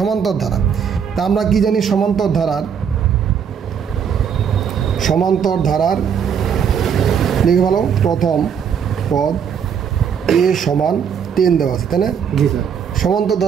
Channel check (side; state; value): left; quieter; 7.5 dB